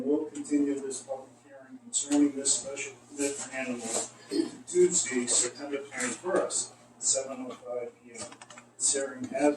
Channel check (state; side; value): identical; both; correlation 1.00